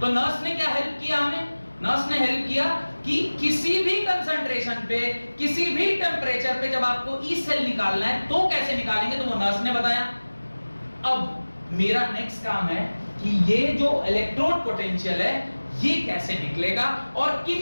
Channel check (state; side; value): inverted; both; correlation -1.00